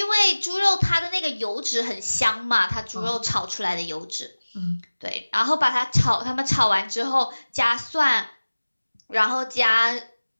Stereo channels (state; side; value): inverted; both; correlation -1.00